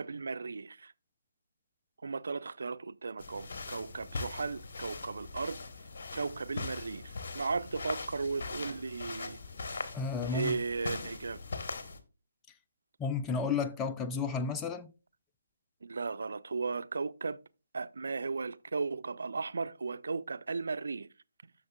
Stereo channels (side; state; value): both; inverted; correlation -0.61